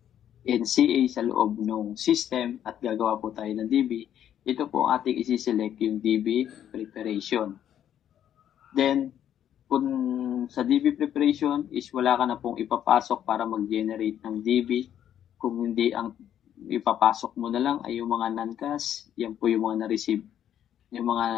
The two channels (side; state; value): right; quieter; 10.3 dB